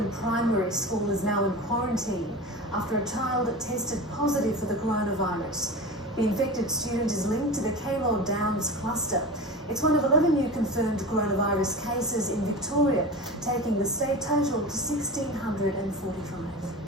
primary school is now in quarantine after a child tested positive for the coronavirus. The infected student is linked to the Keilor Downs cluster. It's one of 11 new confirmed coronavirus cases in Victoria, taking the state total to 1,645.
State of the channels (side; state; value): both; normal; correlation 0.30